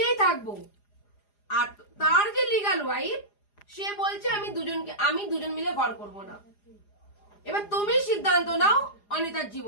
থাকবো, আর তার যে লিগাল ওয়াইফ সে বলছে আমি দুজন মিলে ঘর করব না। এবার তুমি সিদ্ধান্ত নাও অনিতার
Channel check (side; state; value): right; late; 4.9 ms